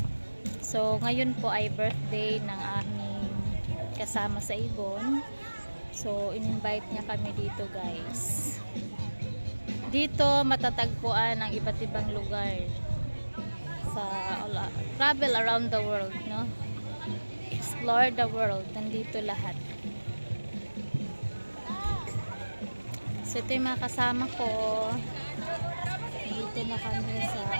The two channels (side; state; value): both; inverted; correlation -1.00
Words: So ngayon po ay birthday ng aming kasama sa Ibon. So in-invite niya kami dito guys. Dito matatagpuan ang iba't ibang lugar sa travel around the world, no? Explore the world, nandito lahat. So ito yung mga kasama ko. Dito na kami sa